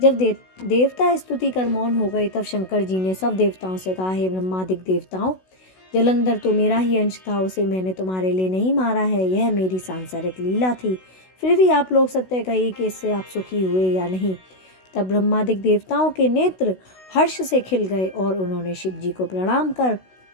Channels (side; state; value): right; late; 16 ms